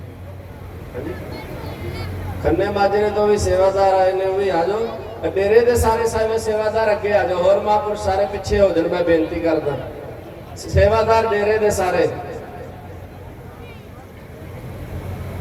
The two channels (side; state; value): both; identical; correlation 1.00